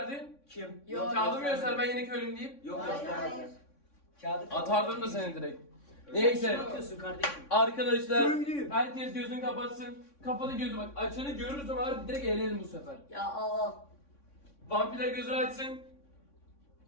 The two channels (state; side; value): late; right; 3.6 ms